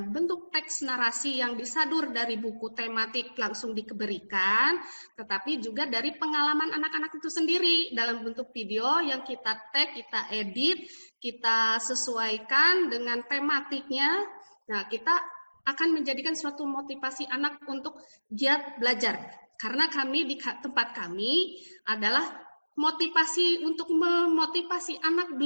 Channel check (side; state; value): both; inverted; correlation -1.00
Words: bentuk teks narasi yang disadur dari buku tematik langsung diberikan, tetapi juga dari pengalaman anak-anak itu sendiri dalam bentuk video yang kita tag, kita edit, kita sesuaikan dengan tematiknya. Nah, kita akan menjadikan suatu motivasi anak untuk giat belajar. Karena kami di tempat kami adalah motivasi untuk memotivasi anak